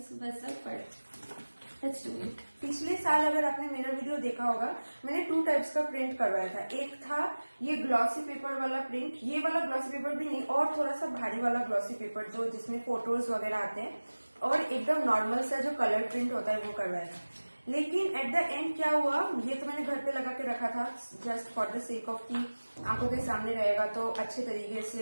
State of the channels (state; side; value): inverted; both; correlation -1.00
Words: वैसा, बट लेट्स डू इट. पिछले साल अगर आपने मेरा वीडियो देखा होगा, मैंने 2 टाइप्स का प्रिंट करवाया था. एक था ये ग्लॉसी पेपर वाला प्रिंट, ये वाला ग्लॉसी पेपर भी नहीं, और थोड़ा सा भारी वाला ग्लॉसी पेपर जो जिसमें फोटोज वगैरह आते हैं, और एकदम नॉर्मल सा जो कलर प्रिंट होता है वो करवाया था. लेकिन एट द एंड क्या हुआ, ये तो मैंने घर पे लगा के रखा था just for the sake of कि आंखों के सामने रहेगा तो अच्छे तरीके